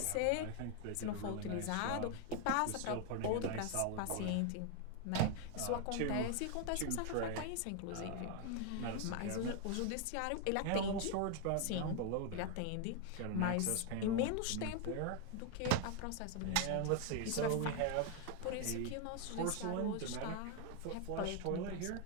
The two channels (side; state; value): both; different; correlation 0.01